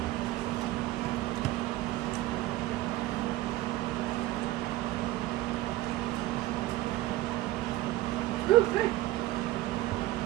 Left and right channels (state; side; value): quieter; left; 16.4 dB